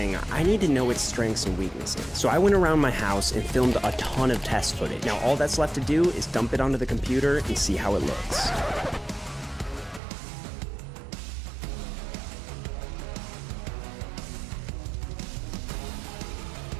I need to know its strengths and weaknesses. So I went around my house and filmed a ton of test footage. Now all that's left to do is dump it onto the computer and see how it looks.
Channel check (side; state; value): left; drops out; at 10.0 s